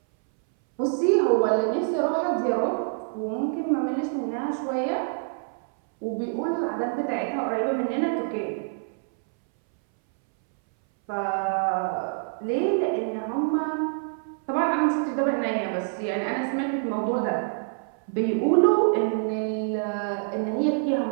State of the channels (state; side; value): silent; left; 61 dB below the other